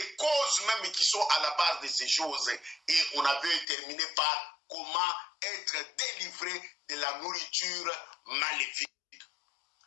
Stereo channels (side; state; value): right; drops out; at 3.7 s